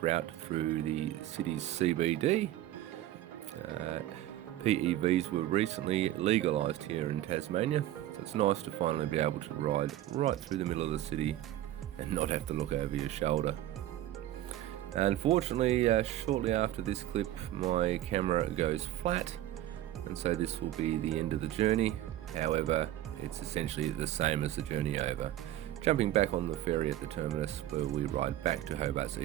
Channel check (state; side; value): quieter; left; 13.7 dB